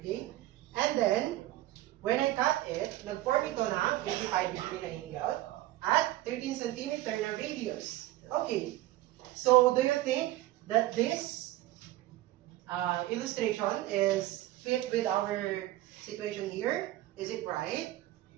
And then, when I cut it, nag-form ito ng 85 degree na angle at 13 centimeter na radius. Okay. So, do you think that this illustration is fit with our situation here? Is it right?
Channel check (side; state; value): left; quieter; 16.1 dB